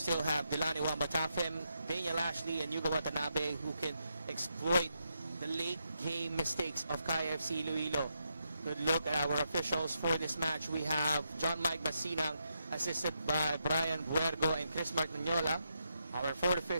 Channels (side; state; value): both; inverted; correlation -0.82